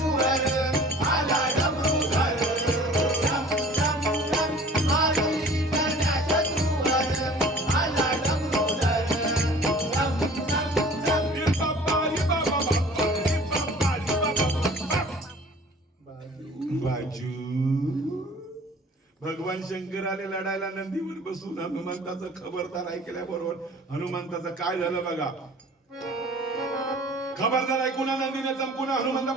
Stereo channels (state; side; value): normal; both; correlation 0.47